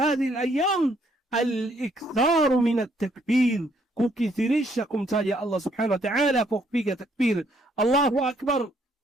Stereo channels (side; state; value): both; normal; correlation 0.68